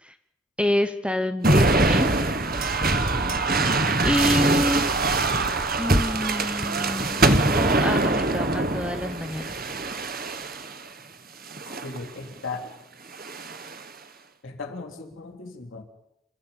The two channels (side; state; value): both; normal; correlation 0.53